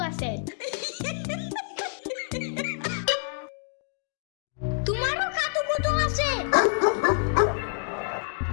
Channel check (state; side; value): silent; right; digital silence